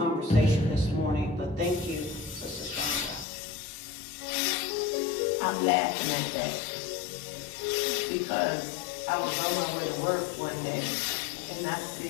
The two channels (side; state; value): right; drops out; at 3.2 s